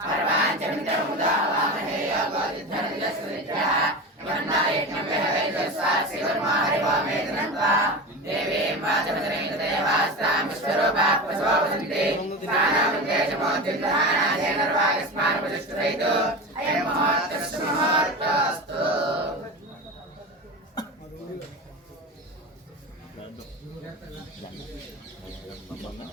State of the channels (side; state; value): both; normal; correlation 0.26